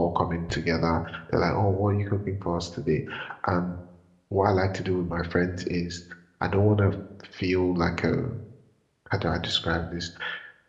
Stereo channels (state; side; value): identical; both; correlation 1.00